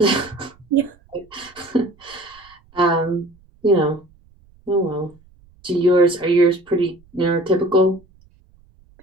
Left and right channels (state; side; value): noise; right; rumble, 29 dB below the sound